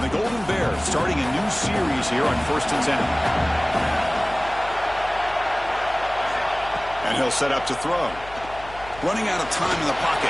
the Golden Bears starting a new series here on 1st and 10. And he'll set up to throw. Running out of time in the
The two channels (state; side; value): noise; left; hum, 17 dB below the sound